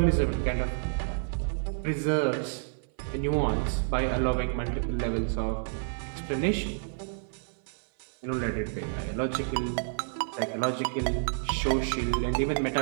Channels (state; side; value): silent; left; 58 dB below the other